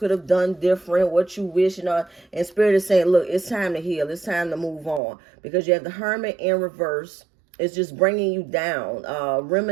have done different, what you wish, you know. And Spirit is saying, look, it's time to heal. It's time to move on. Because you have the Hermit in reverse. It's just bringing you down.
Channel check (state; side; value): drops out; left; at 5.0 s